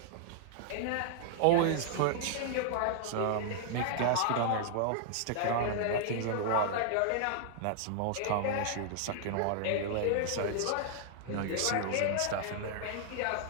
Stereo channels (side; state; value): both; different; correlation -0.01